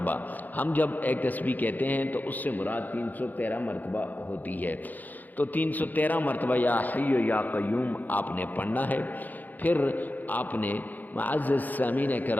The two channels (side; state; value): right; late; 0.083 ms